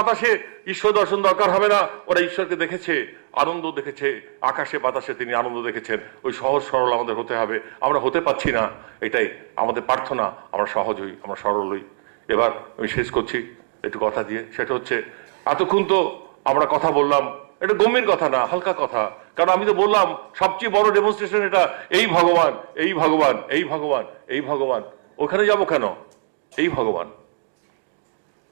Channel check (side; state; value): left; silent; digital silence